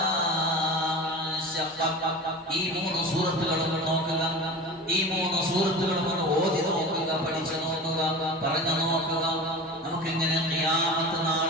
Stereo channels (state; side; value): normal; both; correlation 0.32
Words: ശഖഖത്. ഈ മൂന്ന് സൂറത്തുകളും നോക്കുക, ഈ മൂന്ന് സൂറത്തുകളും ഒന്ന് ഓതി നോക്കുക, പഠിച്ചു നോക്കുക, പറഞ്ഞു നോക്കുക. നമുക്കിങ്ങനെ ഖിയാമത്ത്